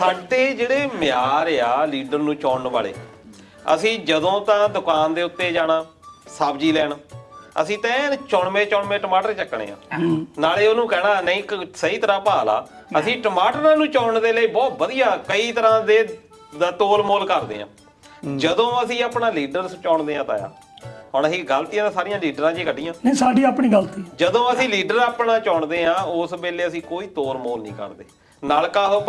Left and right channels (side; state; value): both; identical; correlation 1.00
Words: ਜਿਹੜੇ ਮਿਆਰ ਆ ਲੀਡਰ ਨੂੰ ਚੁਣਨ ਵਾਲੇ, ਅਸੀਂ ਜਦੋਂ ਤਾਂ ਦੁਕਾਨ ਦੇ ਉੱਤੇ ਜਾਣਾ ਸਬਜ਼ੀ ਲੈਣ, ਅਸੀਂ ਤਾਂ ਐਨ ਚੁਣਵੇਂ ਟਮਾਟਰ ਚੱਕਣੇ ਆ, ਨਾਲੇ ਉਹਨੂੰ ਕਹਿਣਾ ਨਹੀਂ ਸਹੀ ਤਰ੍ਹਾਂ ਭਾਅ ਲਾ। ਅਸੀਂ ਟਮਾਟਰਾਂ ਨੂੰ ਚੁਣਨ ਦੇ ਲਈ ਬਹੁਤ ਵਧੀਆ ਕਈ ਤਰ੍ਹਾਂ ਦੇ ਦਾ ਤੋਲ ਮੋਲ ਕਰਦੇ ਆ। ਜਦੋਂ ਅਸੀਂ ਆਪਣਾ ਲੀਡਰ ਚੁਣਦੇ ਆ ਤਾਂ ਹੁਣ ਅਸੀਂ ਗਲਤੀਆਂ ਤਾਂ ਸਾਰੀਆਂ ਲੀਡਰਾਂ 'ਚ ਹੀ ਕੱਢੀਆਂ। ਨਹੀਂ, ਸਾਡੀ ਆਪਣੀ ਗਲਤੀ। ਜਦੋਂ ਅਸੀਂ ਲੀਡਰ ਆਪਣਾ ਚੁਣਦੇ ਆ, ਉਸ ਵੇਲੇ ਅਸੀਂ ਕੋਈ ਤੋਲ ਮੋਲ ਨਹੀਂ ਕਰਦੇ। ਨਲਕਾ ਉਹ